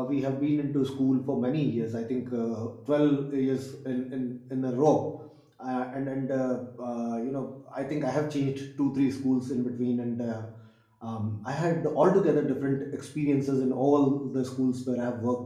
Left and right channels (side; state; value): both; identical; correlation 1.00